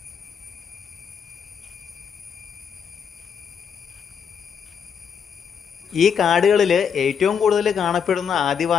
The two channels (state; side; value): quieter; right; 7.1 dB